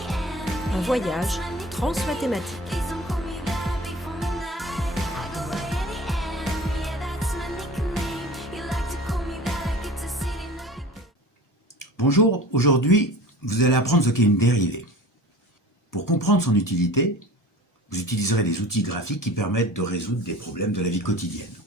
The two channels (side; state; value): both; normal; correlation 0.40